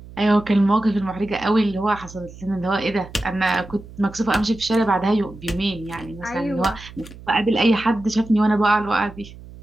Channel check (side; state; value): right; noise; hum, 17 dB below the sound